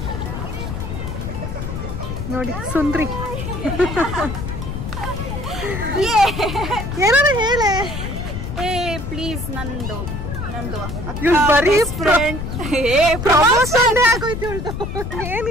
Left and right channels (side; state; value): left; noise; rumble, 5 dB below the sound